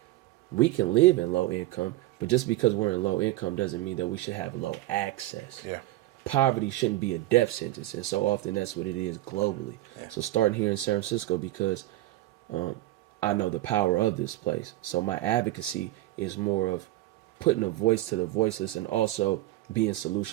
We can live in low income, but just because we're in low income doesn't mean that we should have low access. Yeah. poverty shouldn't be a death sentence, and so often that's what it is globally. So starting here in San Francisco, because I know the power of this place, so my advocacy is more of putting a voice to the voiceless and also being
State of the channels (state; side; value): quieter; left; 16.7 dB